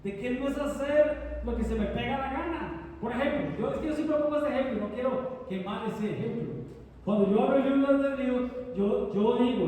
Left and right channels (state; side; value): identical; both; correlation 1.00